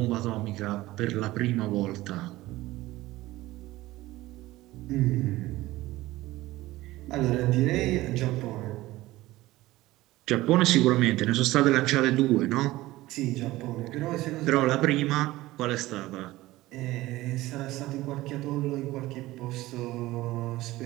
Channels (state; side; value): quieter; left; 17.7 dB